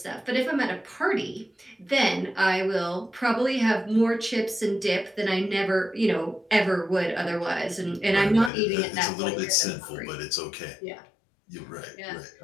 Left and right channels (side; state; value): right; drops out; at 8.5 s